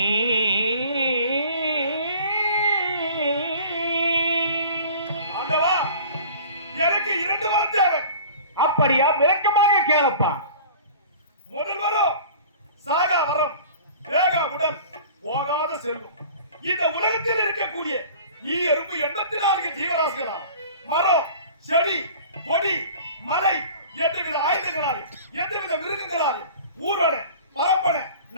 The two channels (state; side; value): inverted; both; correlation -0.44